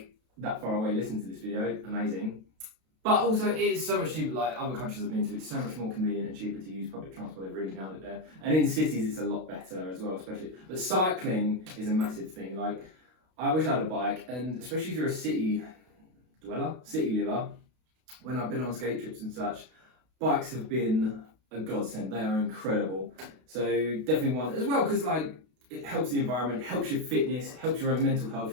that far away listen to this video, amazing. But also it is so much cheaper, like other countries I've been to, it's so much more convenient and cheaper to use public transport, they've really nailed it there. And in cities it's a lot better as well, especially. But cycling is a massive thing. Like, I wish I had a bike, and especially if you're a city liver, when I've been on skate trips and such, bikes have been a godsend, they are incredible. So definitely one, as well, because like, it helps the environment, helps your fitness, helps your own mental health,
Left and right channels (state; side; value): late; left; 32 ms